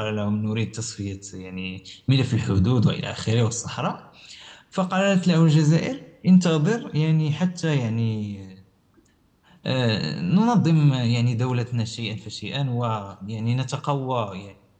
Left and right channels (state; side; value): identical; both; correlation 1.00